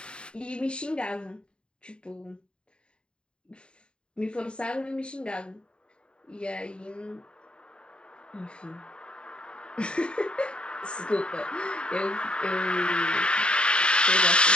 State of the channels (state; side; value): late; right; 0.052 ms